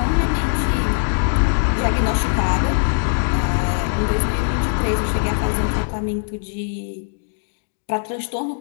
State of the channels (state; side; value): silent; right; digital silence